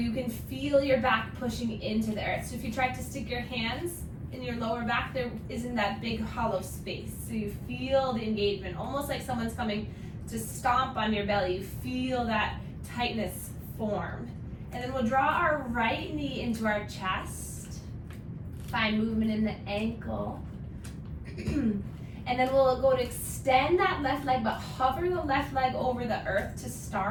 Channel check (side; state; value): both; identical; correlation 1.00